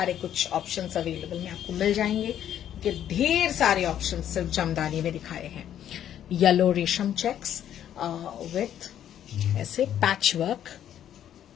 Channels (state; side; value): quieter; right; 10.5 dB